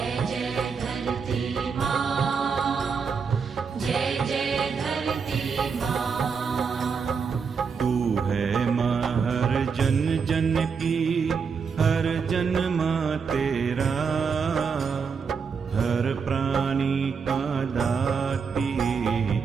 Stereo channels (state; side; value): quieter; left; 5.8 dB